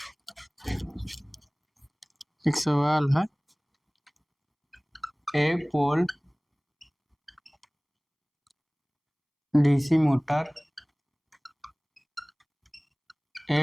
एक सवाल है, एक पोल डीसी मोटर,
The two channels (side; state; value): both; identical; correlation 1.00